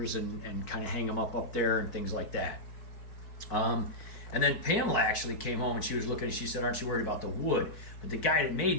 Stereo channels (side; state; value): right; late; 4.6 ms